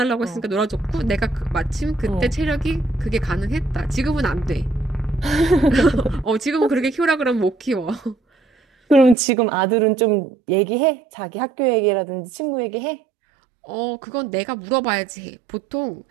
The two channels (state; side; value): drops out; left; at 9.2 s